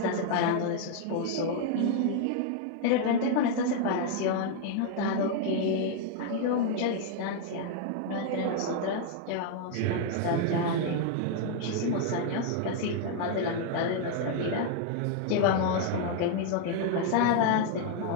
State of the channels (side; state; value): both; different; correlation 0.00